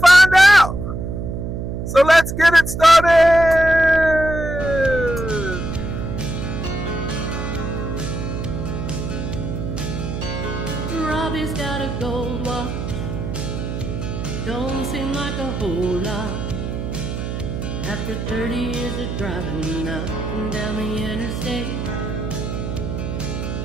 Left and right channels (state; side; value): noise; right; hum, 4 dB below the sound